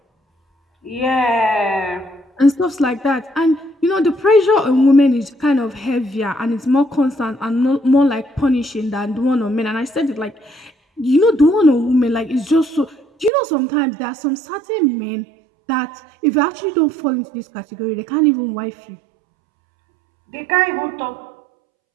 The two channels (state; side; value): drops out; left; at 13.3 s